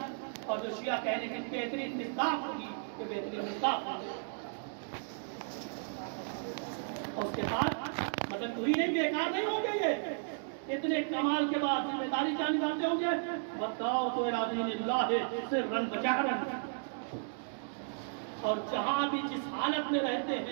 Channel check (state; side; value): silent; left; digital silence